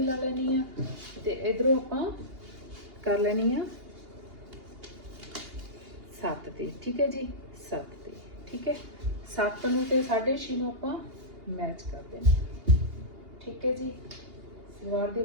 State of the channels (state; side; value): late; left; 2.8 ms